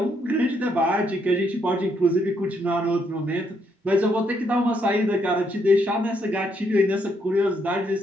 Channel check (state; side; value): normal; both; correlation 0.74